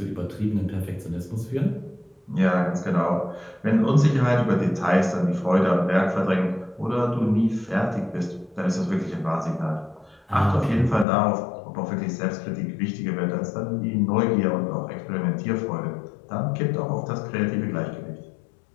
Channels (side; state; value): right; drops out; at 11.1 s